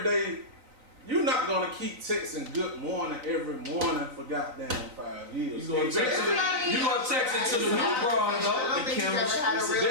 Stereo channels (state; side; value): late; left; 3.9 ms